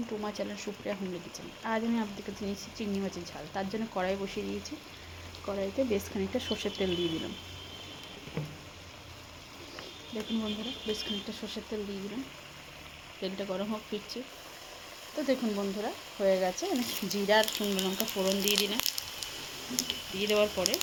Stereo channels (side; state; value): both; identical; correlation 1.00